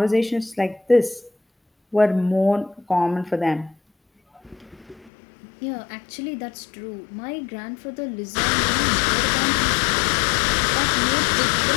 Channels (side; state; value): right; drops out; at 5.1 s